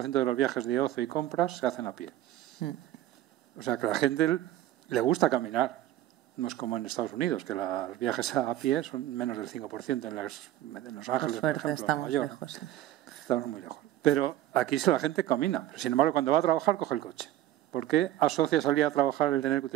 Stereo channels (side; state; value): left; quieter; 13.4 dB